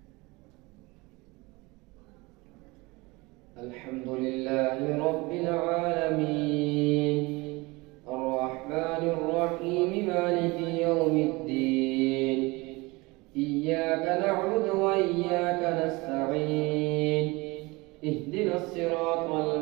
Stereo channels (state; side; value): quieter; left; 24.1 dB